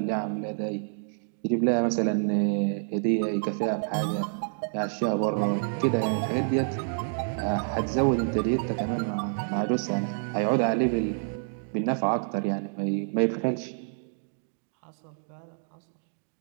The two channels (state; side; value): silent; left; digital silence